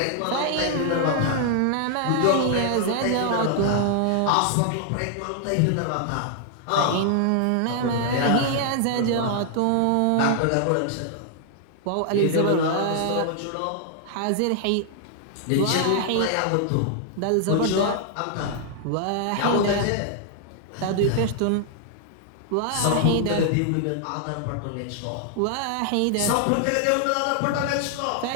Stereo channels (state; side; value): different; both; correlation 0.00